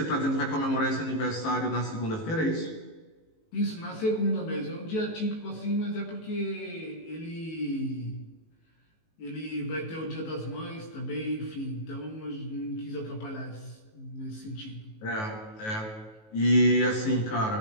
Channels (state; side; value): late; right; 19 ms